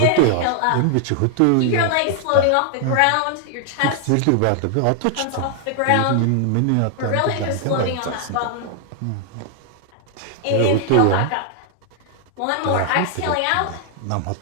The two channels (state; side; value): different; both; correlation 0.00